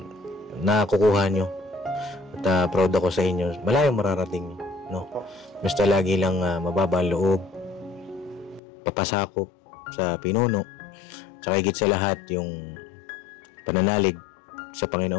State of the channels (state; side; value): drops out; right; at 8.6 s